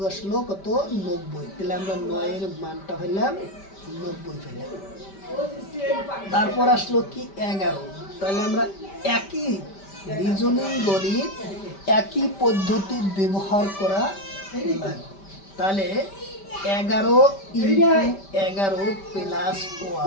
আসলো কত? 90। তাহলে আমরা 9-এর মানটা হইলাম 90 পেলাম। তারপর আসলো কি 11। তাহলে আমরা একই রিজনিং গণিত, একই পদ্ধতি ব্যবহার করা লাগবে। তাহলে 11 ইন্টু 11 প্লাস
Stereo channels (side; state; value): right; late; 5.1 ms